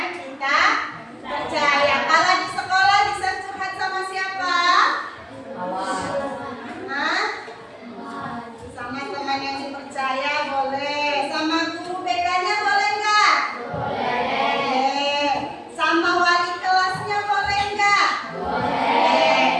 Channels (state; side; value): identical; both; correlation 1.00